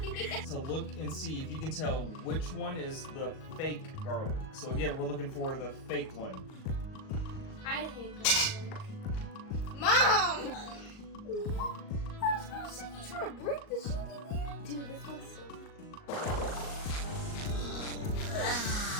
So look and see if you can tell which one is the fake garlic. So again, we're looking for the fake one. I hate garlic. Mom! I was gonna say you trying to break the sheet in there. Dude, this looks so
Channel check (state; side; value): late; right; 38 ms